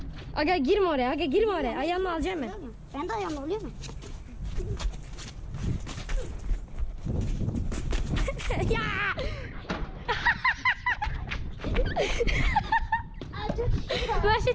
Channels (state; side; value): identical; both; correlation 1.00